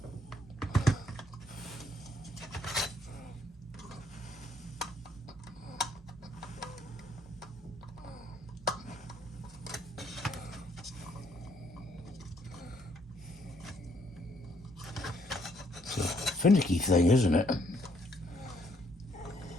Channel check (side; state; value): both; normal; correlation 0.68